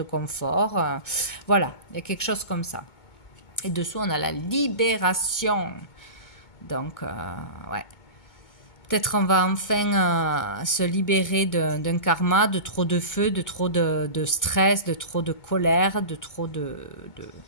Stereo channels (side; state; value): right; late; 2.2 ms